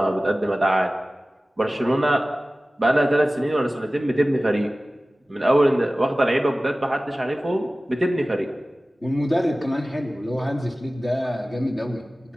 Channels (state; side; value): normal; both; correlation 0.97